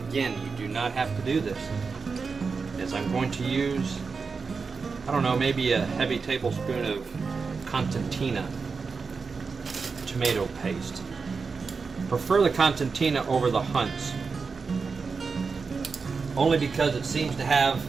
you do not have to do this, is I'm going to use, I don't know, maybe a heavy tablespoon of Constantina tomato paste. prefer the Constantina over the Hunts, only because it seems to have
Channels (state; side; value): quieter; left; 4.9 dB